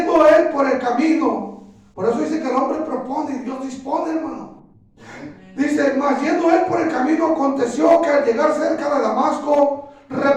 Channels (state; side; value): identical; both; correlation 1.00